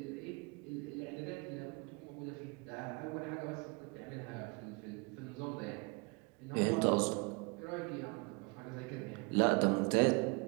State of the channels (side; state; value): left; quieter; 29.5 dB